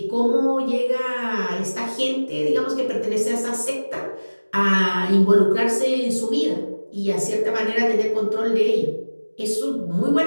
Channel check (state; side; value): inverted; both; correlation -1.00